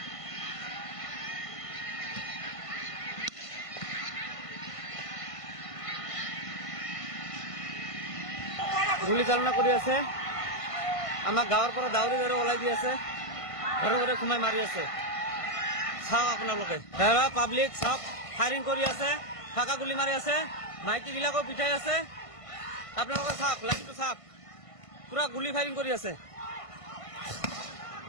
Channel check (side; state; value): right; late; 1.5 ms